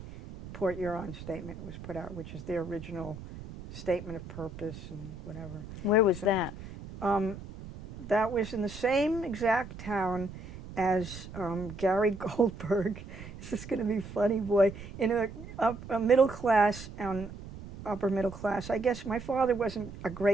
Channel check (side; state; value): right; noise; rumble, 13 dB below the sound